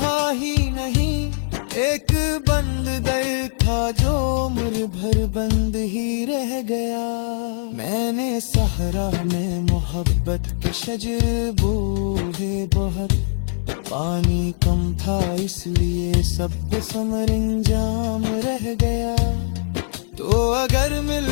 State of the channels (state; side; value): silent; right; digital silence